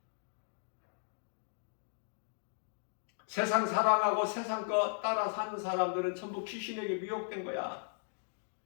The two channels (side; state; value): right; silent; digital silence